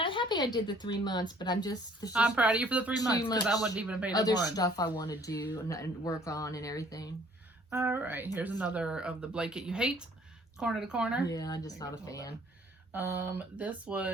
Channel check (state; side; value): normal; both; correlation 0.58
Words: happy I did the 3 months, but I'm proud of you for the 3 months because I wouldn't even have paid other stuff I want to do and work on and everything. All right, here's another of the blanket you hate, corner to corner. Yeah, I'm just not a fan. This